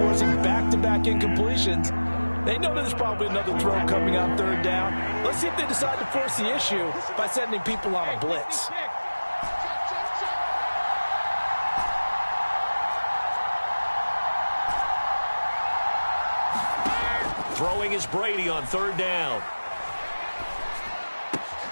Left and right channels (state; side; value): inverted; both; correlation -1.00